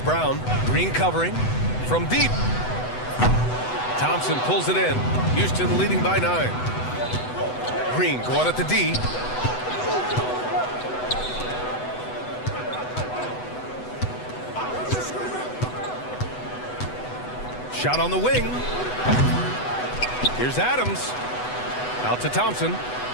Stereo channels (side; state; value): right; late; 8.0 ms